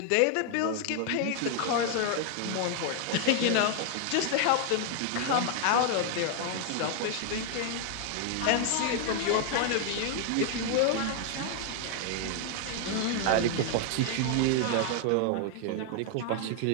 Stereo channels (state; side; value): different; both; correlation 0.00